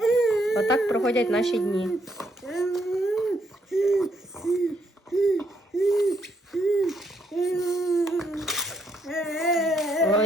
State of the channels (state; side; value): normal; both; correlation 0.74